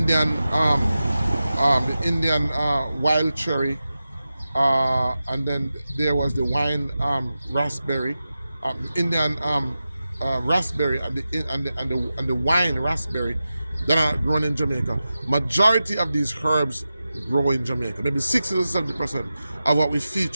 wild cherry, and then there was the wine raspberry, Indian raspberry, and the wine raspberry that are grown in Jamaica. Majority of these herbs grow in Jamaica. Maybe 60 to 70% of what we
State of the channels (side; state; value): both; inverted; correlation -0.93